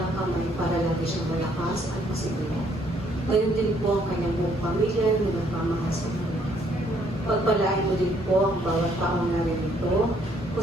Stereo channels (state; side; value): normal; both; correlation 0.67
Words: kamay para lagi siyang malakas at masiguro. Gayon din po ang kanyang buong pamilya na nagmamahal sa kanya. Pagpalain mo din po ang bawat taong narinito,